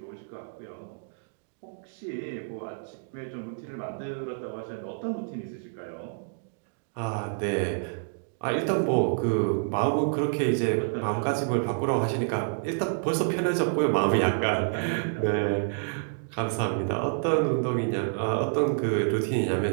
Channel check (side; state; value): left; silent; digital silence